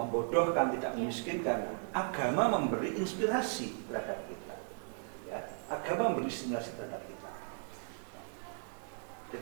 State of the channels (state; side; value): silent; left; 54 dB below the other